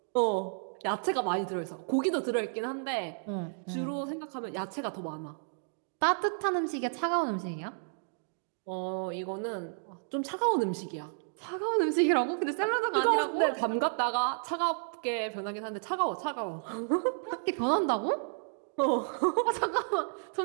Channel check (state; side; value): silent; left; digital silence